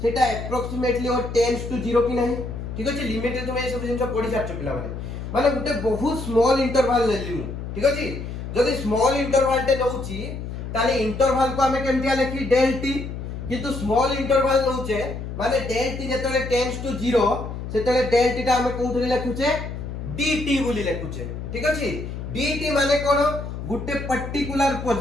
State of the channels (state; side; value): noise; left; hum, 7 dB below the sound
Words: सेटा अप्रोक्सीमेटली और टेंड्स टू 0 कि नहीं ठीक अछि लिमिट रे तुम ए सब जिंस पढि सारछ पिला माने गुटे बहुत स्मॉल इंटरवल लेली मु ठीक अछि जदि स्मॉल इंटरवल टे नउची ताले इंटरवल को हमें केमतिया लिखी डेल टी किंतु स्मॉल इंटरवल नउचे माने डेल टी जेतले टेंड्स टू 0 सेतले डेल टी ता हमें कोउथले लिखुचे dt बोली लिखुचे ठीक अछि dt माने कोन गुटे पर्टिकुलर